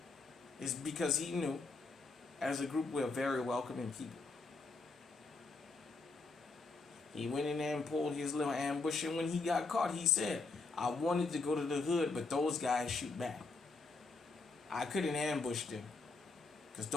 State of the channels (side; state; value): right; quieter; 3.7 dB